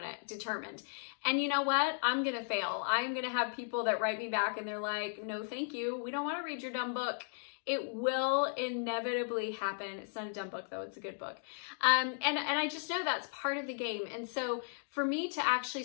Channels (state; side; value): silent; right; digital silence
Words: it, determined. And you know what? I'm gonna fail. I'm gonna have people that write me back and they're like, no, thank you. We don't wanna read your dumb book. It will inevitably happen. It's not a dumb book though, it's a good book. And I just know that's part of the game. And so for me to actually